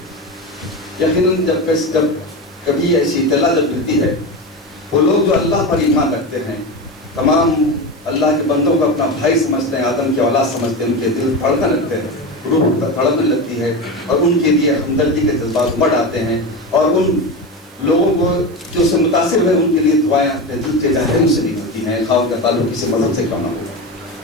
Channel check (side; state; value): right; noise; hiss, 27 dB below the sound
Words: یقیناً جب کبھی ایسی اطلاع جب ملتی ہے، وہ لوگ جو اللہ پر ایمان رکھتے ہیں، تمام اللہ کے بندوں کو اپنا بھائی سمجھتے ہیں، آدم کی اولاد سمجھتے ہیں، ان کے دل دھڑکنے لگتے ہیں، روح تڑپنے لگتی ہے اور ان کے لیے ہمدردی کے جذبات امڑ آتے ہیں اور ان لوگوں کو جو سے متاثر ہوئے ان کے لیے دعائیں اپنے دل کے ذہن سے نکلتی ہیں، خواہ کا تعلق کسی مذہب سے کیوں نہ ہو.